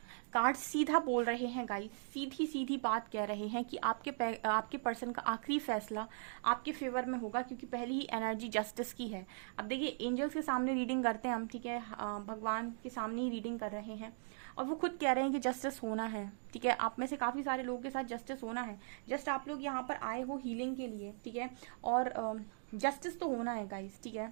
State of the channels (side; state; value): left; silent; digital silence